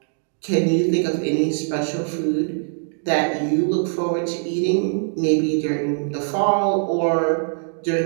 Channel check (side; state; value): left; silent; 63 dB below the other